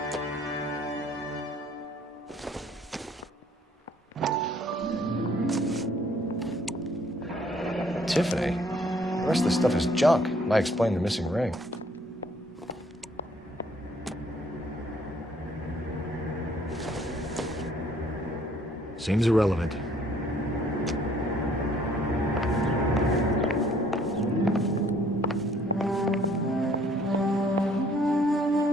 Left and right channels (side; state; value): both; normal; correlation 0.62